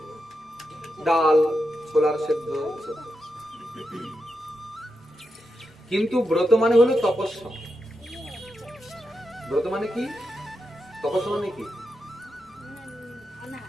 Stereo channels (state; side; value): normal; both; correlation 0.87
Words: ডাল, ছোলার সেদ্ধ। কিন্তু ব্রত মানে হলো তপস্যা। ব্রত মানে কি? তপস্যা মানে কি?